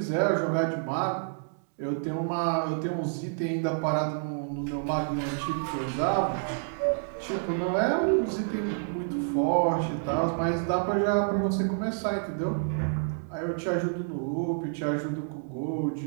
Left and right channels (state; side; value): silent; left; digital silence